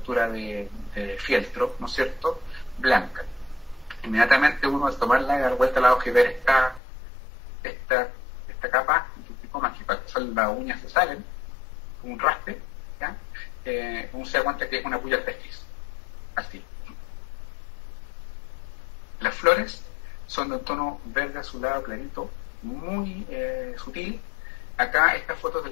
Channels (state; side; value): drops out; right; at 6.8 s